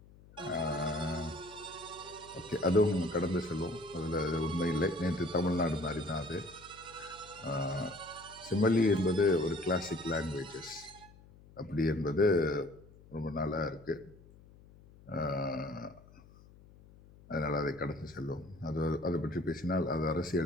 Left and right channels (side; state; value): left; noise; hum, 23 dB below the sound